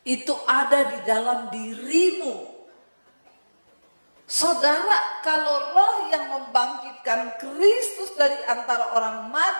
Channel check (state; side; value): inverted; both; correlation -1.00